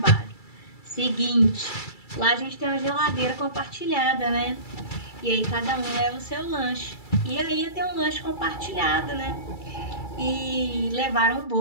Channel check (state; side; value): late; right; 2.3 ms